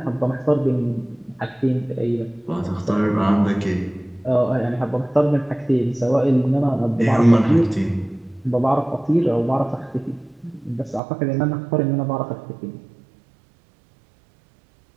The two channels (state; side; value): drops out; left; at 11.0 s